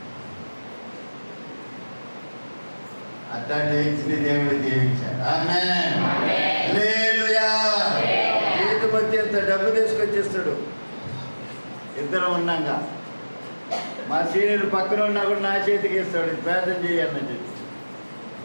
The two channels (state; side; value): inverted; both; correlation -1.00